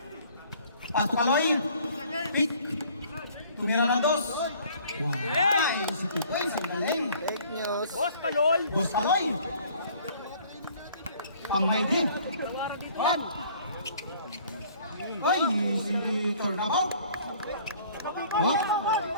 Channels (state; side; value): inverted; both; correlation -0.55